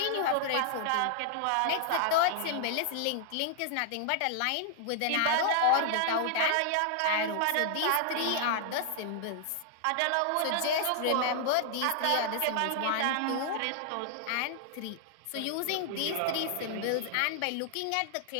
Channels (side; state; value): both; different; correlation -0.01